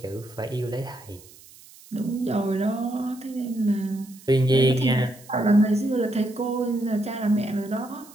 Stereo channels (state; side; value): noise; right; hiss, 22 dB below the sound